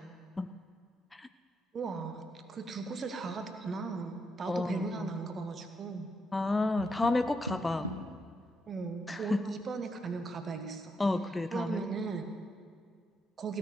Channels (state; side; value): normal; both; correlation 0.80